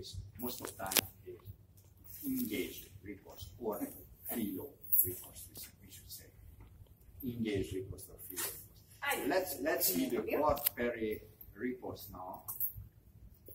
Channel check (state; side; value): identical; both; correlation 1.00